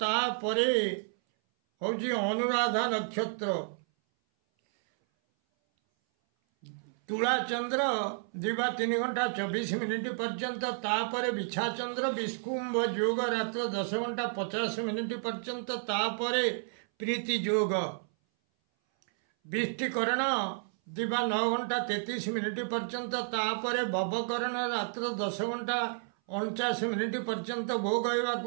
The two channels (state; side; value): silent; left; 57 dB below the other